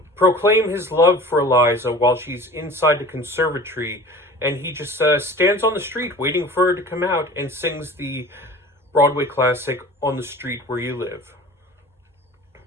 proclaim his love for Eliza while she's inside the conservatory, and he just stands on the street waiting for her to come out and sings the Broadway classic On the Street Where You Live.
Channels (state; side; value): normal; both; correlation 0.41